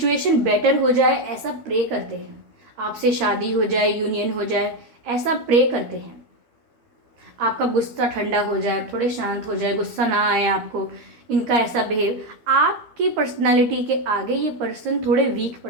बेटर हो जाए ऐसा प्रे करते हैं, आपसे शादी हो जाए, यूनियन हो जाए, ऐसा प्रे करते हैं। आपका गुस्सा ठंडा हो जाए, थोड़े शांत हो जाए, गुस्सा ना आए आपको, इनका ऐसा बिहेव। आपकी पर्सनालिटी के आगे ये पर्सन थोड़े वीक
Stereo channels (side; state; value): left; late; 12 ms